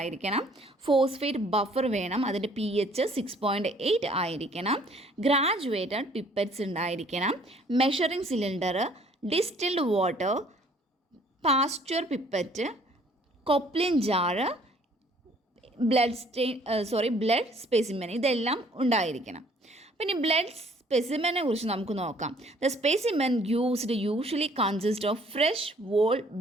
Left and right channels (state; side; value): normal; both; correlation 0.59